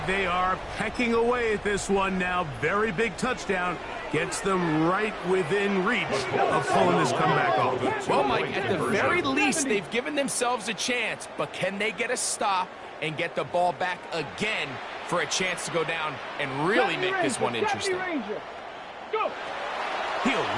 they are pecking away at this one now. Very big touchdown. Gets them right within reach of pulling this comeback off. Well, Mike, at the very least, they've given themselves a chance, but can they get a stop and get the ball back again for a chance to go down and really make this one interesting? He'll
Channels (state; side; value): identical; both; correlation 1.00